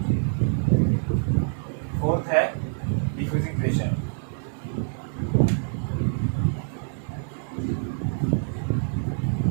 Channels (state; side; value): silent; left; 61 dB below the other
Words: फोर्थ है diffusing pressure,